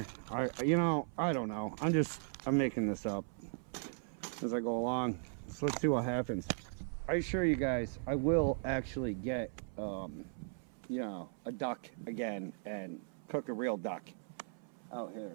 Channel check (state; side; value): silent; left; 53 dB below the other